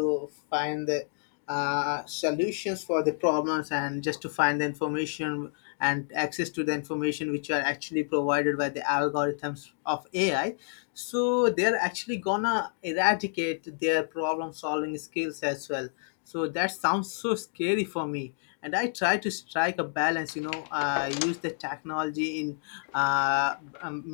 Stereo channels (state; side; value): silent; right; digital silence